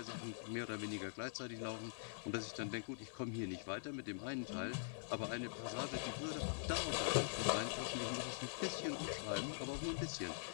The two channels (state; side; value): silent; right; digital silence